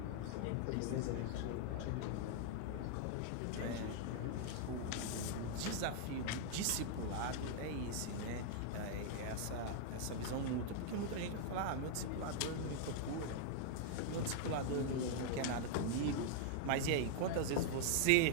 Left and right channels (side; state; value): both; different; correlation -0.01